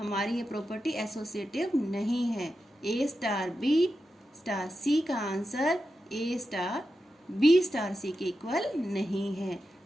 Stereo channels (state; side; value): normal; both; correlation 0.90